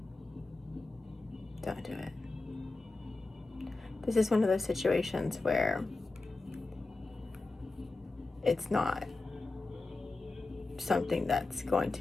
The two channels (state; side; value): quieter; right; 3.4 dB